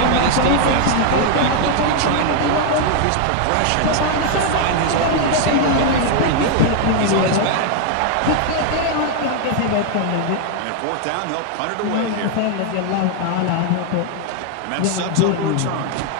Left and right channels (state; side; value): different; both; correlation 0.00